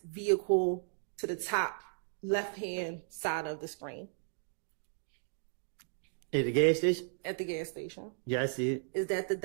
vehicle to the top left-hand side of the screen? At the gas station? At the gas station. Yeah, I see it. Is that the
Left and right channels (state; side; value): silent; left; digital silence